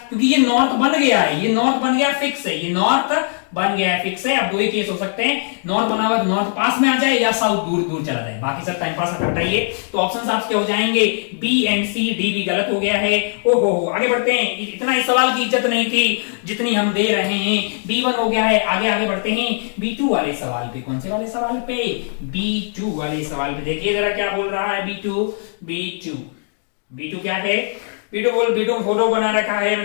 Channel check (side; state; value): right; silent; digital silence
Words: क्योंकि ये नॉर्थ बन गया है, ये नॉर्थ बन गया फिक्स है, ये नॉर्थ बन गया है फिक्स है। अब दो ही केस हो सकते हैं, नॉर्थ बना हुआ तो नॉर्थ पास में आ जाए या साउथ दूर दूर चला जाए, बाकी सब टाइम पास हटाइए। तो ऑप्शन आपके हो जाएंगे बी एंड सी, डी भी गलत हो गया है। ओहो, आगे बढ़ते हैं। इतना इस सवाल की इज्जत नहीं थी जितनी हम दे रहे हैं। B1 हो गया है, आगे बढ़ते हैं B2 वाले सवाल पे। कौन से वाले सवाल पे, B2 वाले सवाल पे। देखिए जरा क्या बोल रहा है B2 क्या है, B2 फोटो बना रखा है।